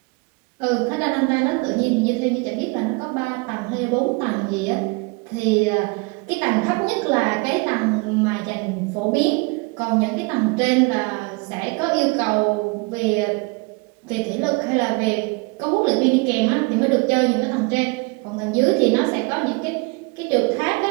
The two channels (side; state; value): left; quieter; 28.7 dB